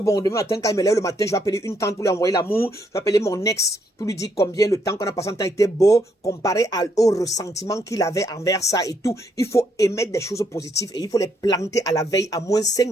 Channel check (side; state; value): both; normal; correlation 0.73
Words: demain matin, quand il me lève le matin, je vais appeler une tante pour lui envoyer l'amour. Je vais appeler mon ex pour lui dire combien le temps qu'on a passé en temps était beau, comparé au ressentiment qu'il avait envers ça et tout. Il faut émettre des choses positives et il faut les planter à la veille, à moins 5